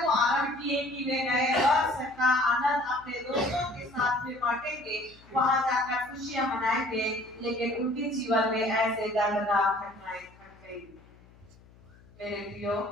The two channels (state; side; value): noise; left; hum, 26 dB below the sound